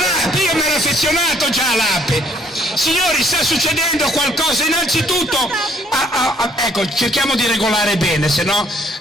io mi ero affezionato già all'ape. Signori, sta succedendo qualcosa, innanzitutto, ecco, cerchiamo di regolare bene, se no...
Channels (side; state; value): both; normal; correlation 0.64